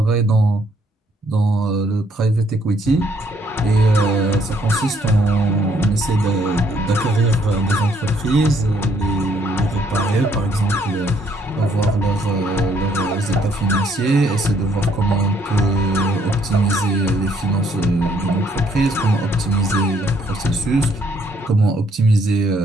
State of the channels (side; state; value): both; normal; correlation 0.67